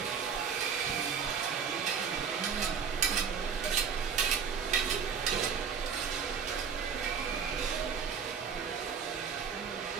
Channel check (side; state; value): left; quieter; 6.6 dB